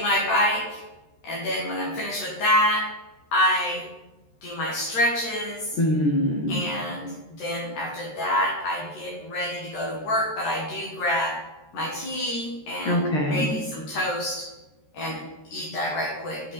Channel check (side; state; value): right; late; 13 ms